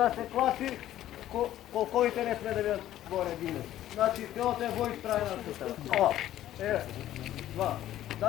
се класи, колковите не сме да бидат горе дигнати. Значи телото е во исправена сустава. Ова, еве, два.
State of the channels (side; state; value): right; quieter; 13.0 dB